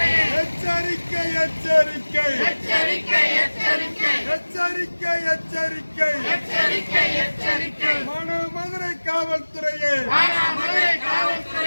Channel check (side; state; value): both; inverted; correlation -1.00